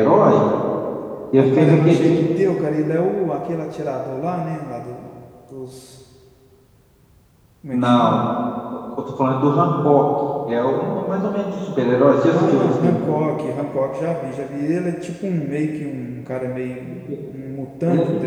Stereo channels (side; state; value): both; identical; correlation 1.00